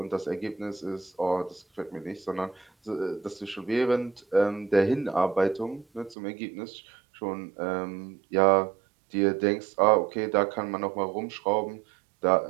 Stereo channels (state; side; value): drops out; left; at 6.2 s